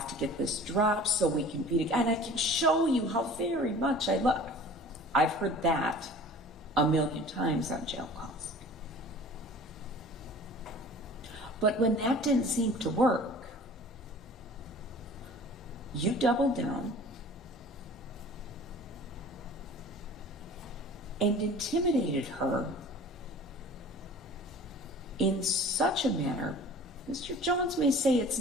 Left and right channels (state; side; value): normal; both; correlation 0.44